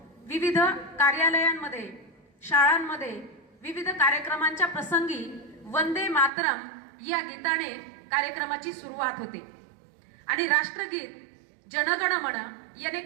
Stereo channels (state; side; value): drops out; left; at 6.3 s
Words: विविध कार्यालयांमध्ये, शाळांमध्ये विविध कार्यक्रमांच्या प्रसंगी वंदे मातरम या गीताने कार्यक्रमाची सुरुवात होते आणि राष्ट्रगीत जनगण मन याने